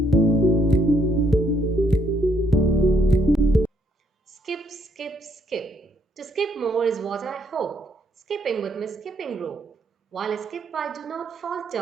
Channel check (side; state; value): both; normal; correlation 0.70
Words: Skip, skip, skip. To skip more is what I hope. Skipping with my skipping rope. While I skip, I do not